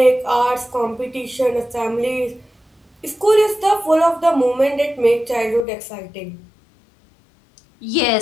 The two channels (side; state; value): right; drops out; at 5.7 s